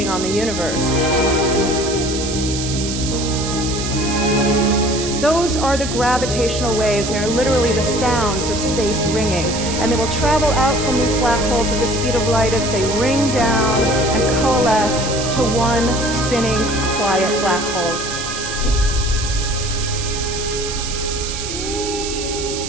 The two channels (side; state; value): right; noise; hiss, 6 dB below the sound